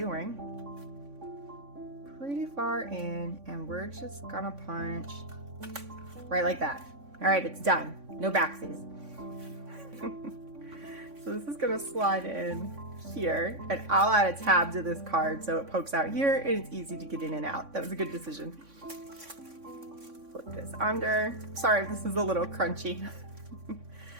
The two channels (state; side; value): late; left; 3.6 ms